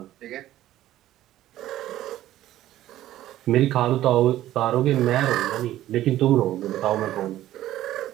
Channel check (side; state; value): left; quieter; 13.8 dB